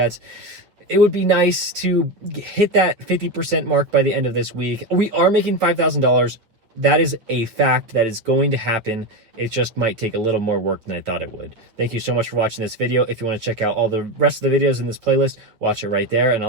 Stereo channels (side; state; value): left; late; 9.0 ms